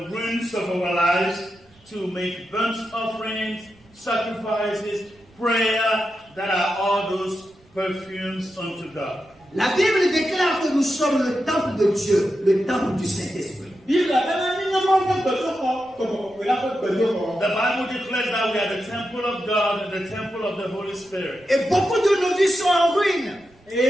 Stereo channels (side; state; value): right; noise; rumble, 30 dB below the sound